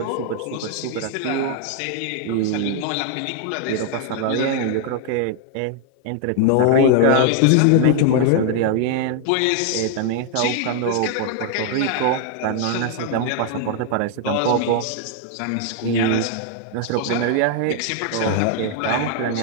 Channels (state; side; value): different; both; correlation 0.00